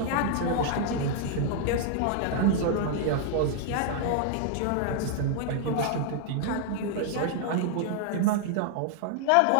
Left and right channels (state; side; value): different; both; correlation 0.00